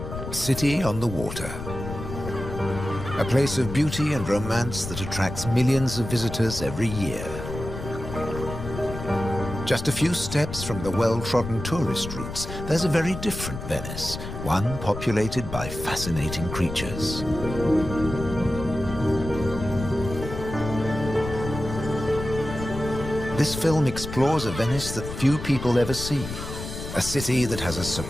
city on the water. A place of beauty and romance that attracts millions of visitors every year. Just a few steps from the well-trodden tourist routes, there's a very different Venice, one populated by fascinating creatures. This film explores a Venice that few people ever see, a city that has a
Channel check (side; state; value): left; noise; rumble, 8 dB below the sound